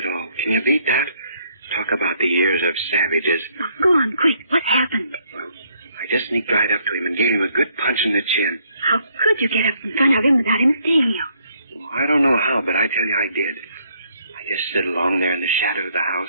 at all. Can you beat that? Talk about the ears of savages. Oh, go on, quick. What happened? Well, I just sneaked right up to him and gave him a good punch in the chin. How could you get up in front of him without him seeing you? Well, I don't know how, but I tell you I did. I just stood along there in the shadow of the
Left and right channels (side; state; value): both; inverted; correlation -0.68